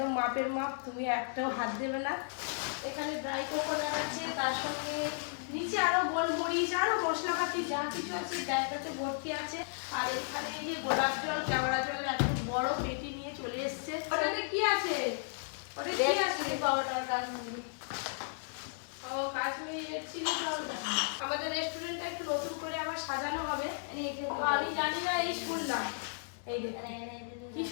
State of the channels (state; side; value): silent; right; digital silence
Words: মাপের মাপ, তুমি একটাও হাত দেবে না। এখানে ড্রাই কোকোনাট আছে, তার সঙ্গে নিচে আরো গোলমরিচ আরো মশলাপাতি যা কিছু আছে ব্যাগটাতে ভর্তি আছে। আর এখানে এই যে গোলাপ জল, কেওড়া জলের একটা বড় পেটি নিয়ে চলে এসছে। ওটাতে কি আছে? ওটা কি আছে? ও কাশ্মীর চিলি পাউডার। আমাদের রেস্টুরেন্টটা একটু নতুন করে আবার সাজানো হবে, তো আমি জানি না, এই শুনলাম। এই দেখুন কি